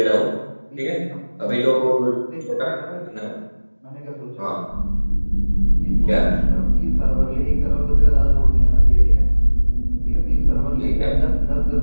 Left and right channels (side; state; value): both; inverted; correlation -1.00